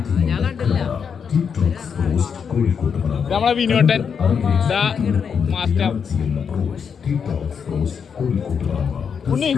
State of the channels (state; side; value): quieter; right; 6.7 dB